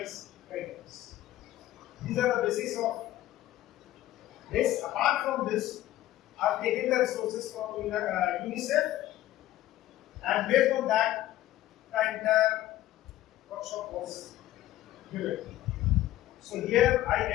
guidelines. These are the basis of this. Apart from this, I have taken the resources from UNICEF, and based on that, the entire workshop was given. So here I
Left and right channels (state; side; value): quieter; right; 14.5 dB